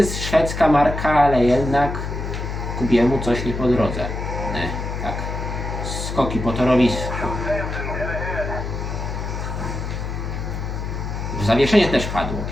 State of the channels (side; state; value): left; noise; hum, 5 dB below the sound